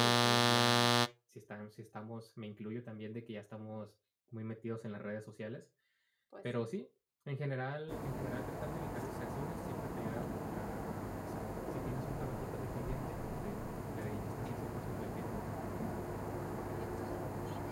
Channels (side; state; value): both; identical; correlation 1.00